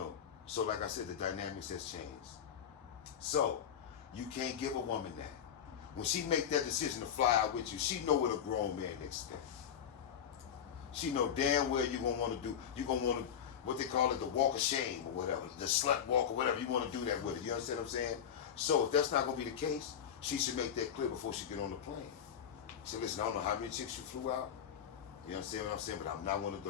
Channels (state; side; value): quieter; right; 8.6 dB